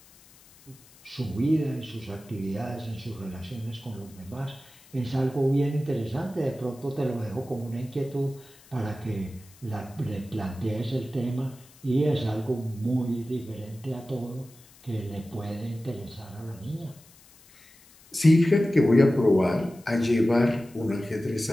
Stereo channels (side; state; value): left; noise; hiss, 25 dB below the sound